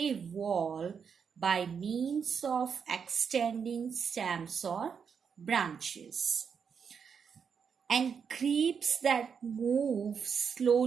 wall by means of extending stems or branches, and creeps that move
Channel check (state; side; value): quieter; left; 6.6 dB